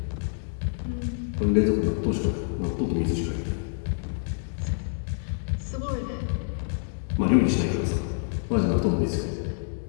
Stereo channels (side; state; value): right; silent; digital silence